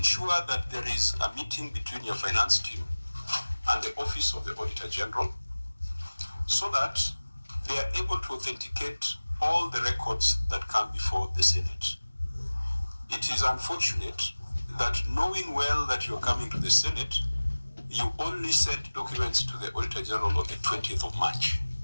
that there is a meeting between your finance team and the Office of the Auditor General so that they are able to authenticate all the records that come before the Senate. It is unfortunate that knowing well that you're coming to the Senate, you only sent documents to the Auditor General on the 20th of March.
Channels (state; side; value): inverted; both; correlation -1.00